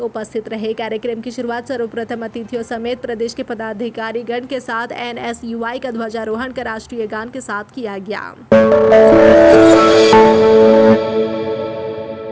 उपस्थित रहे। कार्यक्रम की शुरुआत सर्वप्रथम अतिथियों समेत प्रदेश के पदाधिकारी गण के साथ NSUI का ध्वजारोहण कर राष्ट्रीय गान के साथ किया गया।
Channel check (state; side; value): identical; both; correlation 1.00